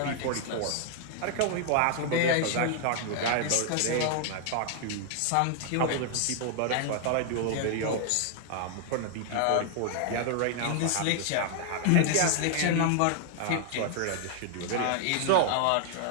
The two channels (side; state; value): both; different; correlation 0.00